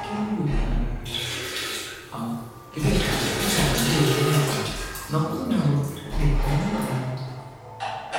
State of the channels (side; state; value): both; identical; correlation 1.00